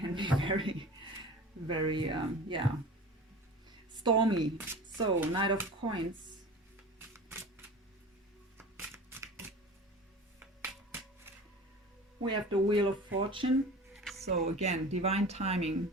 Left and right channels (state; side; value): normal; both; correlation 0.37